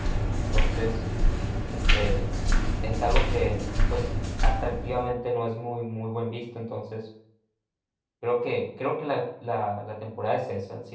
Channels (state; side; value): identical; both; correlation 1.00